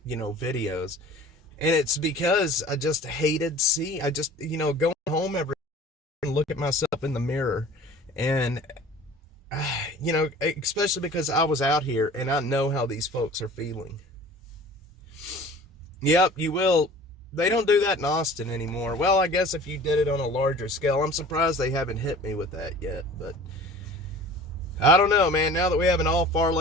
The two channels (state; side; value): normal; both; correlation 0.44